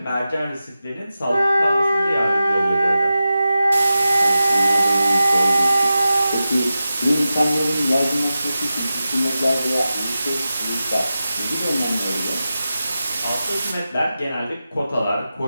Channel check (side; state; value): both; inverted; correlation -0.93